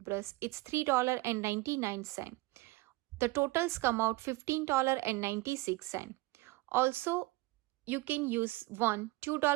it's $3.99. The totals come out $15.96. Also, you can use one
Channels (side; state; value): left; quieter; 21.2 dB